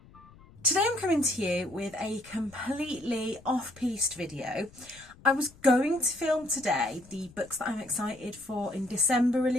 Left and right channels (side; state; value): left; noise; rumble, 24 dB below the sound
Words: Today I'm coming to you with a completely off-piste video. I was going to film today the books that I'm excited for in December